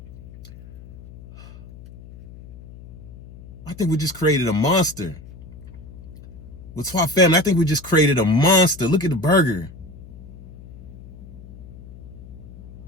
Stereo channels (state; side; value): noise; left; hum, 17 dB below the sound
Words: I think we just created a monster. Whaatwaa family, I think we just created a monster. Look at the burger.